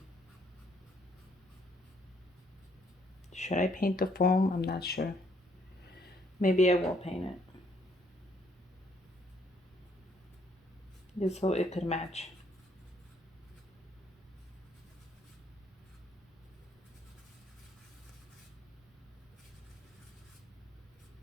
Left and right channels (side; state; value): both; normal; correlation 0.68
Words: Should I paint the foam? I'm not sure. Maybe I will paint it. Just so it could match.